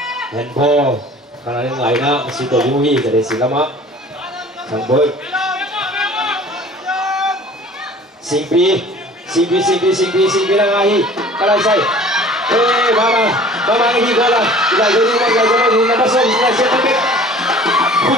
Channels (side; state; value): both; normal; correlation 0.47